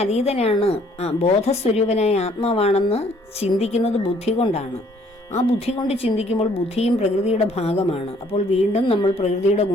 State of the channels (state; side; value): normal; both; correlation 0.62